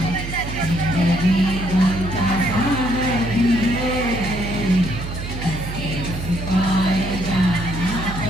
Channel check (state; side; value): noise; right; hum, 7 dB below the sound